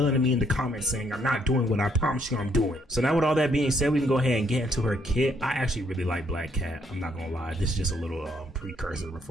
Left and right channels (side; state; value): both; normal; correlation 0.70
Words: at me in the comments saying I'm not doing what I promise you I'm doing. So now with all that being said, we can go ahead and get into her kit. I actually really like Black Cat. I'm not gonna lie. This is just a little precursor